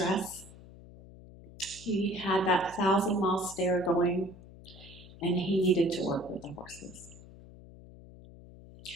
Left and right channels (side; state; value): left; noise; hum, 19 dB below the sound